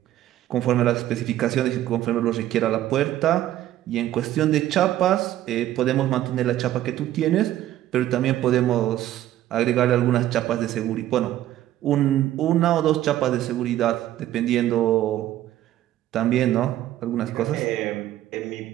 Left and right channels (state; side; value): quieter; left; 13.2 dB